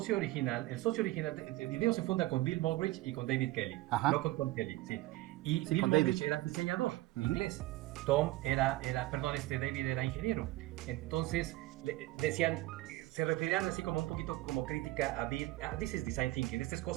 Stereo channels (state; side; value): quieter; left; 18.3 dB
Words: original. El socio original, el video se funda con Bill Moggridge y con David Kelly. Ajá. No con Tom Kelly, sí. Y Sí, Bill con Moggridge David. era diseñador inglés. Tom David era ingeniero. Entonces, decían, se referían así como un poquito como crítica a Bill. This is design thinking, esta es